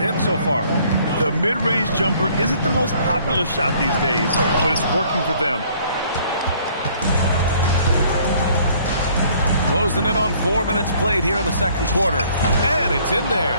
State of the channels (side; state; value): both; inverted; correlation -0.59